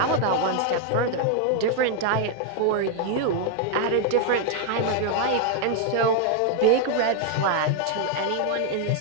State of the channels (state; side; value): different; both; correlation 0.00